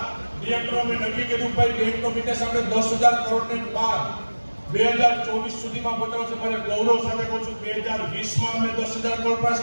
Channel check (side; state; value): both; inverted; correlation -1.00